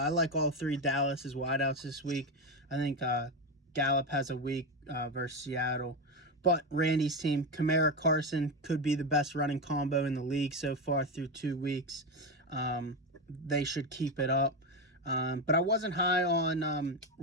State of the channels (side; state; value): both; normal; correlation 0.14